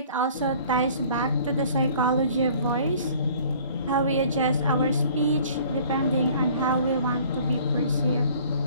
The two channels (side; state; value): both; inverted; correlation -0.52